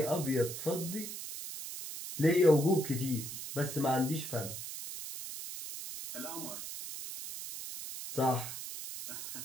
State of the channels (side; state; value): right; noise; hiss, 8 dB below the sound